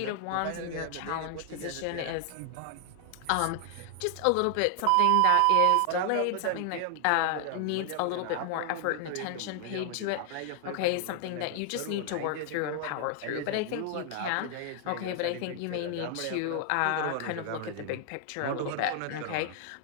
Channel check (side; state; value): both; different; correlation 0.00